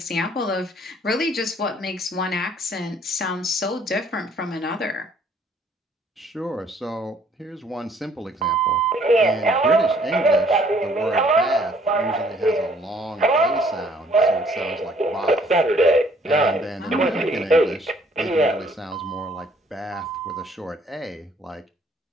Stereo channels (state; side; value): normal; both; correlation 0.61